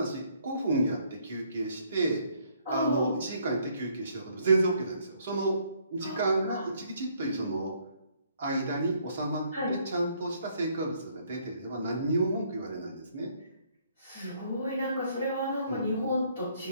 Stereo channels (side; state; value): both; inverted; correlation -0.66